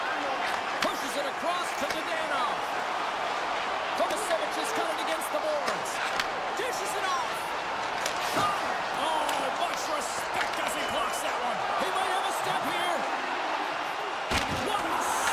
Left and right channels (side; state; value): both; identical; correlation 1.00